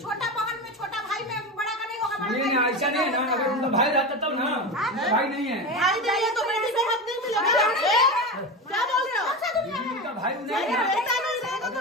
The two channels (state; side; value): normal; both; correlation 0.22